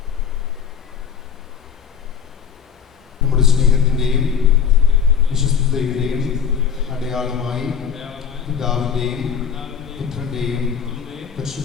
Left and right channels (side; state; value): right; quieter; 7.4 dB